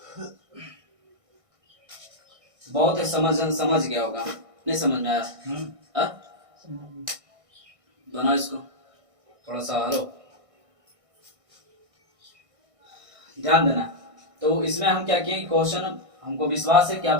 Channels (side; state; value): left; late; 1.6 ms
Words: बहुत है, समझ गया होगा, नहीं समझ में आया, बनाओ इसको, थोड़ा सा हलो, ध्यान देना। तो इसमें हम क्या किए, क्वेश्चन हमको विश्वास है कि आप